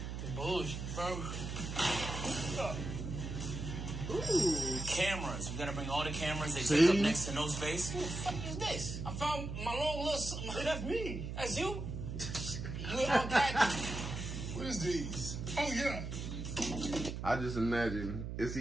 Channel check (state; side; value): noise; right; hum, 5 dB below the sound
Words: Bullshit, bro. Ooh. Cameras. We gotta bring all the cameras. They See? take up next to no space. What the fuck is this? I found my long little... Hey, that's me. That's you? You unpacked. What is these? Oh, yeah. I just imagine it's